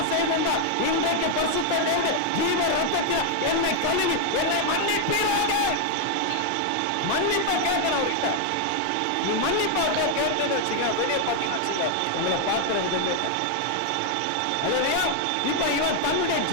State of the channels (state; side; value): different; both; correlation 0.01